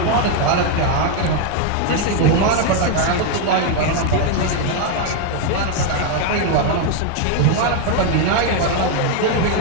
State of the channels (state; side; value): different; both; correlation 0.01